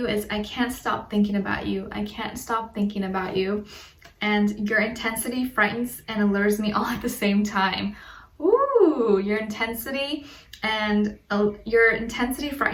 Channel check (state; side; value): identical; both; correlation 1.00